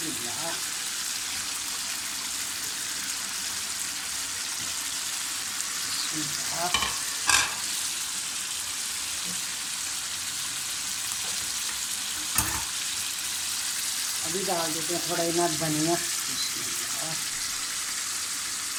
बिस्मिल्लाह। अभी डाल देते हैं थोड़ा इतना धनिया। बिस्मिल्लाह।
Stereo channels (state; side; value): identical; both; correlation 1.00